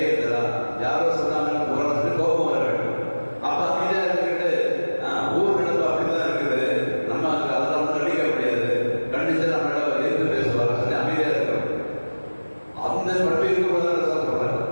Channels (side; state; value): both; inverted; correlation -1.00